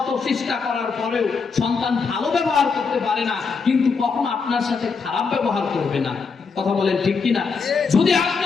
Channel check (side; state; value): right; quieter; 5.1 dB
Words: চেষ্টা করার পরেও সন্তান ভালো ব্যবহার করতে পারে না, কিন্তু কখনো আপনার সাথে খারাপ ব্যবহার করবে না। কথা বলেন ঠিক কিনা? যদি আপনি